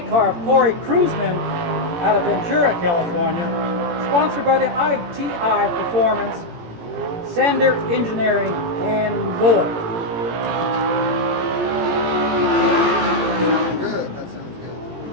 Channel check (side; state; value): left; late; 17 ms